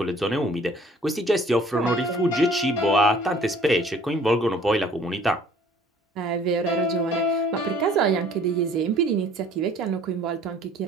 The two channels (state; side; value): normal; both; correlation 0.54